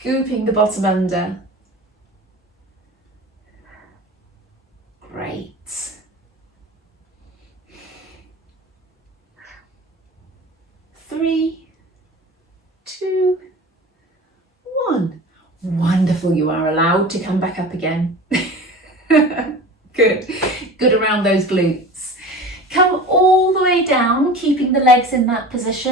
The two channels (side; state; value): both; normal; correlation 0.36